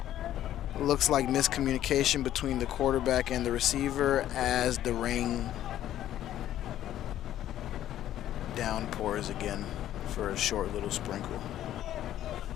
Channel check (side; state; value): right; quieter; 12.3 dB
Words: Looks like miscommunication between the quarterback and the receiver as the rain downpours again for a short little sprinkle.